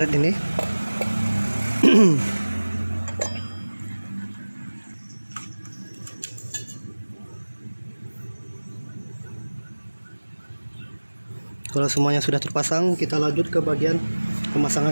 ini. Kalau semuanya sudah terpasang, kita lanjut ke bagian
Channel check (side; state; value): both; inverted; correlation -1.00